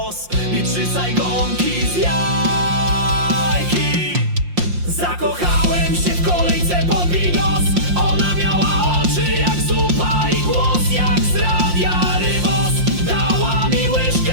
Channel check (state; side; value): late; left; 5.7 ms